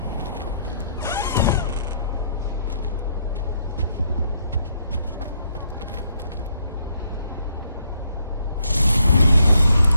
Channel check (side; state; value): both; inverted; correlation -0.72